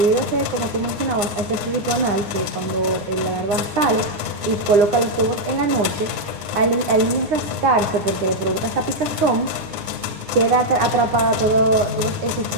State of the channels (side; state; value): left; late; 9.7 ms